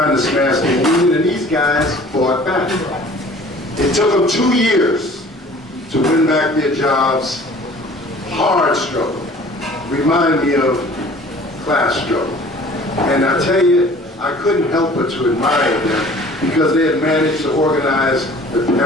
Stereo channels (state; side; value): normal; both; correlation 0.49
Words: to smash the union, and these guys fought back. It took them 2 years to win back their jobs. Hard struggle. Remind me of class struggle. And I tell you, I couldn't help but to admire them because they had managed to organize the